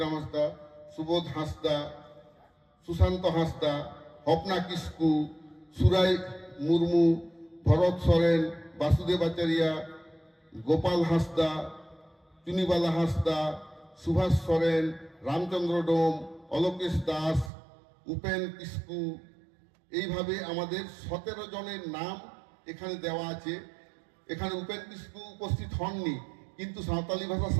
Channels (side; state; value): left; drops out; at 17.5 s